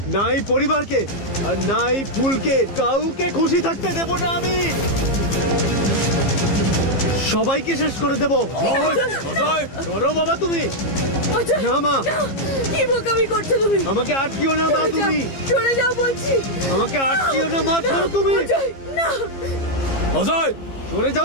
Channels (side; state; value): right; late; 15 ms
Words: না এই পরিবারকে, আর না এই ফুলকে, কাউকে খুশি থাকতে দেব না আমি। সবাইকে শেষ করে দেব। ধরো বাবা তুমি। অজয়, না মা, কি বোকামি করছো তুমি? আমাকে আটকিও না মা, তুমি সরে যাও বলছি। আমাকে আটকিও না মা, ছাড়ো তুমি। অজয়, না। অজয়, সরে